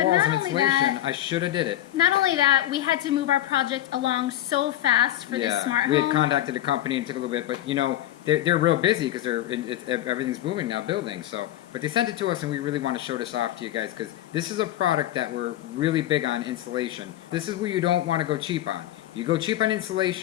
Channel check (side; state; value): right; quieter; 13.3 dB